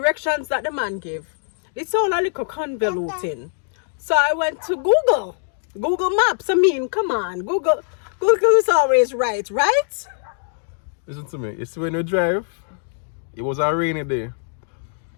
that the man gave, it sounded like a convoluting. So I went to Google Maps. I mean, come on, Google is always right? Listen to me. You see, when you drive, it was a rainy day,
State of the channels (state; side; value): silent; right; digital silence